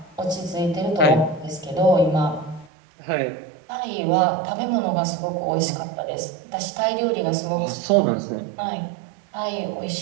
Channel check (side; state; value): left; drops out; at 2.7 s